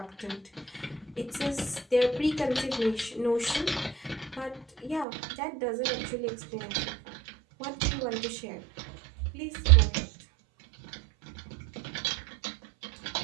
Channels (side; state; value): left; drops out; at 5.1 s